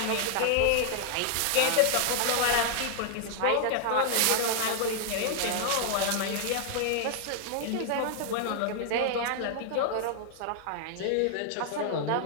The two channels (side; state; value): both; different; correlation -0.01